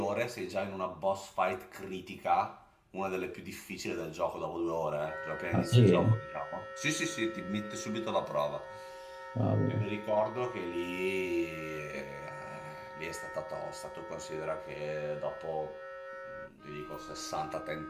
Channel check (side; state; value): both; identical; correlation 1.00